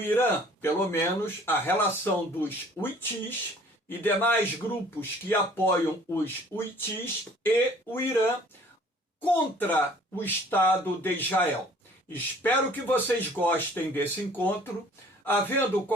Irã, pelo menos a relação dos Houthis e demais grupos que apoiam os Houthis e o Irã contra o Estado de Israel. Espero que vocês gostem desse encontro. Havendo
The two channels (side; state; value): both; normal; correlation 0.53